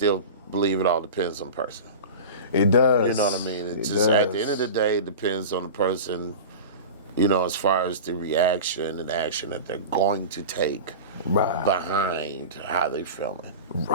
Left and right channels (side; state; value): both; inverted; correlation -0.30